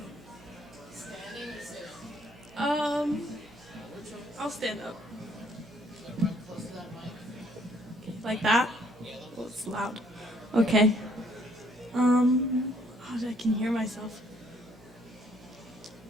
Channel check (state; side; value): noise; right; hum, 24 dB below the sound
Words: I'll stand up. Like Okay. I can hear myself.